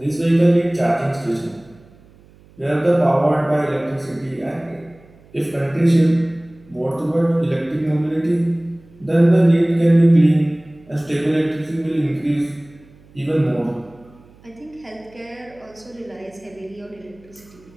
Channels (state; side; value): noise; right; hum, 27 dB below the sound